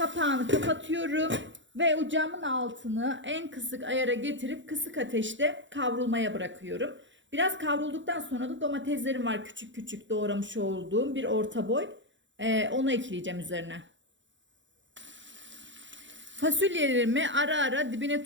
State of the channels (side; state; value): left; late; 0.54 ms